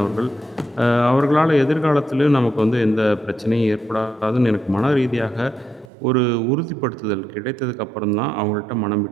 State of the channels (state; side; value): drops out; left; at 5.9 s